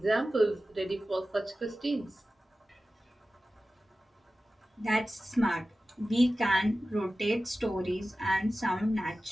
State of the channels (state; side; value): normal; both; correlation 0.95